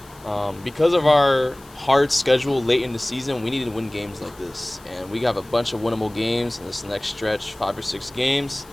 because of our hard schedule late in the season, we needed to win games like this, and we have a bunch of winnable games in this next stretch, 5 or 6 games.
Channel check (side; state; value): left; noise; hiss, 24 dB below the sound